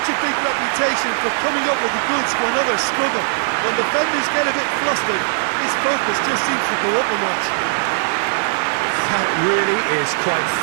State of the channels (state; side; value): silent; left; digital silence